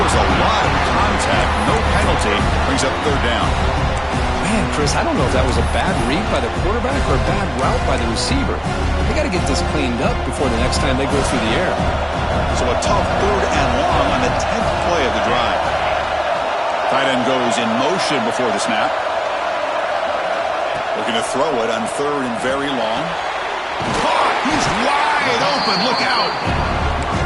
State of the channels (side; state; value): both; identical; correlation 1.00